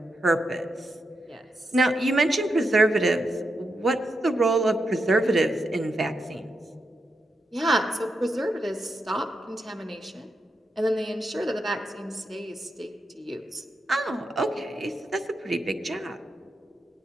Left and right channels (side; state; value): both; normal; correlation 0.85